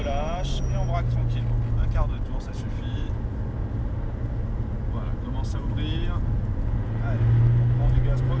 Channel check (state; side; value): identical; both; correlation 1.00